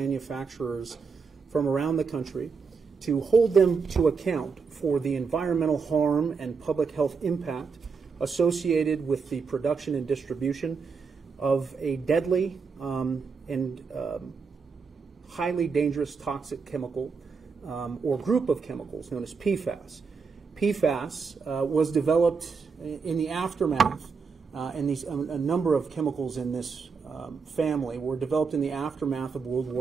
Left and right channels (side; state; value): left; quieter; 5.3 dB